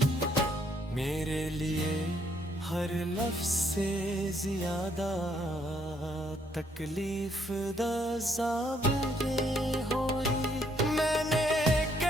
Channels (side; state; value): both; normal; correlation 0.70